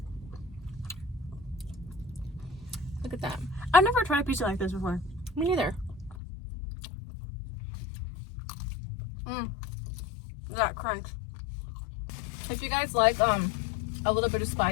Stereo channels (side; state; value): right; drops out; at 6.2 s